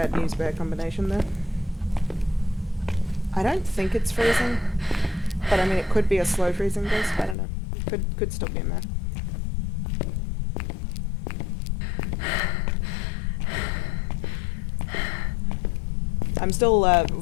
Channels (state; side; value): drops out; right; at 7.4 s